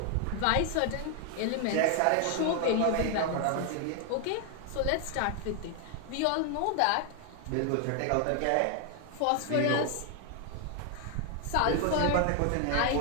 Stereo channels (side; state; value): both; different; correlation 0.00